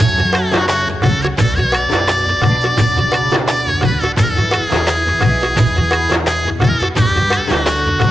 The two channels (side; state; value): both; normal; correlation 0.90